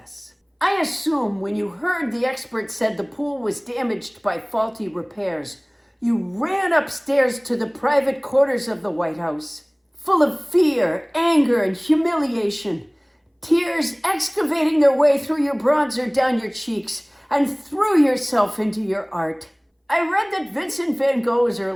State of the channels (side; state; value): both; identical; correlation 1.00